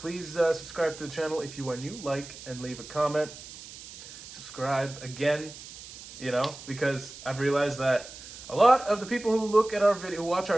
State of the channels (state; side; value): noise; right; hiss, 15 dB below the sound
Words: subscribe to the channel if you are new, like and leave a comment. Subscribe again, because I've realized that a lot of the people who look at our video, who watch